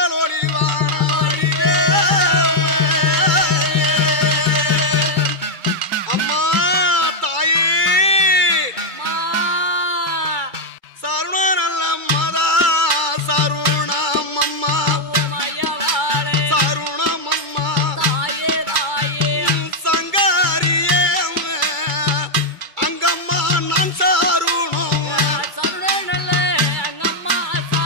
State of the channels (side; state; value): left; late; 2.3 ms